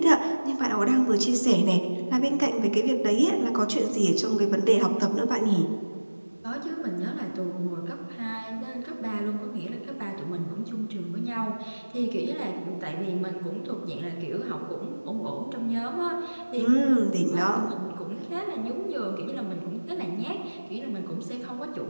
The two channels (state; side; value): inverted; both; correlation -1.00